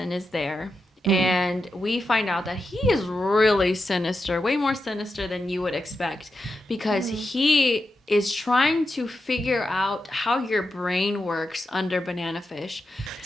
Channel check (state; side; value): normal; both; correlation 0.88